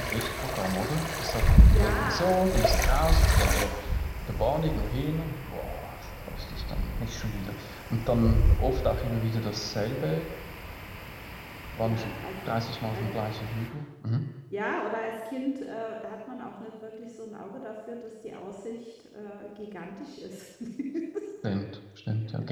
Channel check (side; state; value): both; identical; correlation 1.00